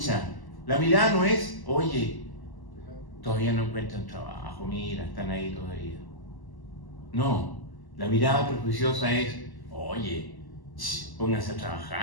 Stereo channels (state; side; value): late; right; 1.1 ms